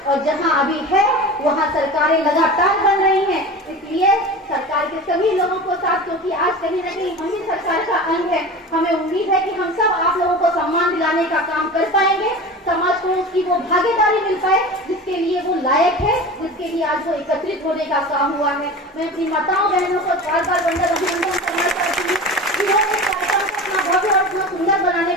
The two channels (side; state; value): both; normal; correlation 0.32